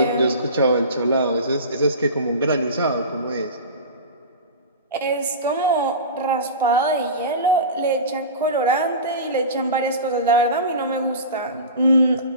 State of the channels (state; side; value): inverted; both; correlation -0.31